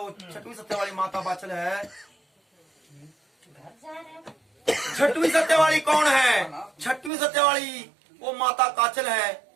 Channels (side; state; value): left; drops out; at 7.1 s